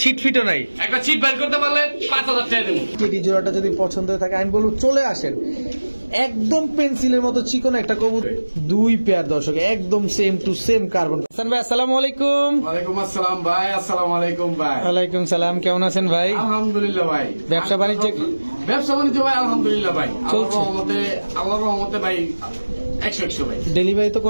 ছিট ফিটও নাই। একটা ছিট বাইর করতে পারলে 5000 টাকা দেবো। টেডি জোড়াটা যদি পছন্দ হয়ে থাকে আমি বলবো চলে আসেন। একদম পেন্সিলের মতো চিকন একটা কবুতর, দুই পেয়ার দর্শক, একদম same to same carbon. Hasan ভাই আসসালামু আলাইকুম। ওয়ালাইকুম আসসালাম ভাই। আসসালামু আলাইকুম ভাই। ওয়ালাইকুম সালাম, কেমন আছেন ভাই? আলহামদুলিল্লাহ ভাই। ব্যবসা বাণিজ্য ভাই আলহামদুলিল্লাহ ভাই, আল্লাহর রহমতে ভাই 100 ভাই। ডেলিভারি তো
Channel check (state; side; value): inverted; both; correlation -1.00